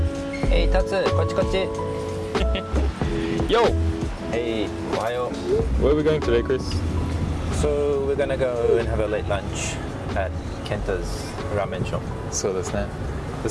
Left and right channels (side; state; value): both; identical; correlation 1.00